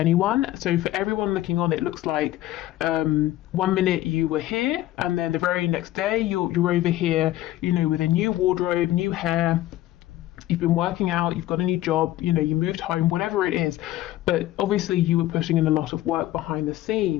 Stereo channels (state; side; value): quieter; right; 15.0 dB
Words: So for everyone looking on, it looks like 1 minute you were here and then the very next day you're over here, you know, with a new wardrobe, new hair. You've been working out, you've got a new job, you know, you moved home, whatever it is. But obviously you were putting in a lot of work behind the